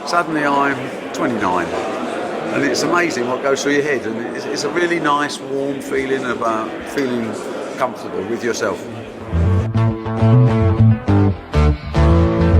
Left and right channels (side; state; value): both; identical; correlation 1.00